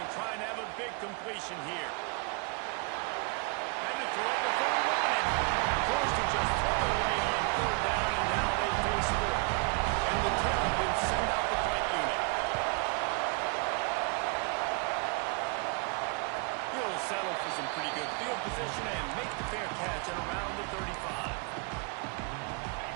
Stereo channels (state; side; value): quieter; left; 32.6 dB